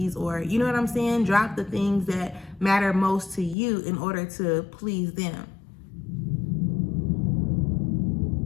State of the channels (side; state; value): right; drops out; at 3.6 s